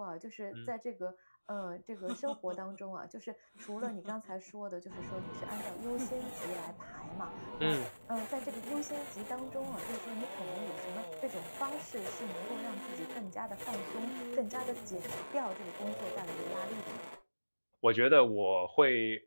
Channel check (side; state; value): both; inverted; correlation -1.00